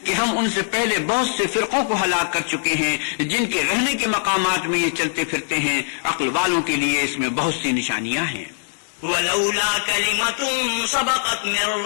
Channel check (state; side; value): silent; right; digital silence